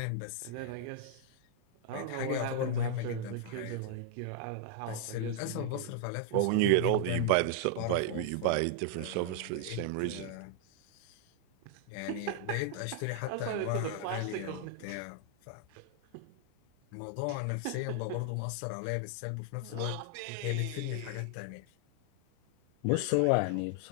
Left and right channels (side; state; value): both; different; correlation 0.00